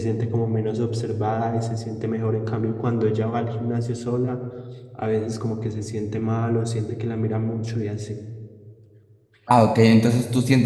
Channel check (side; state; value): both; identical; correlation 1.00